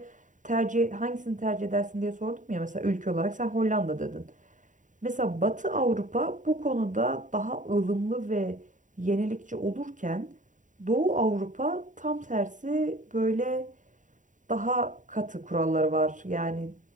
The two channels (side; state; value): left; late; 0.37 ms